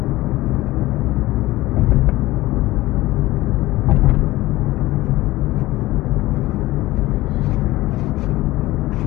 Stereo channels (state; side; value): quieter; right; 18.0 dB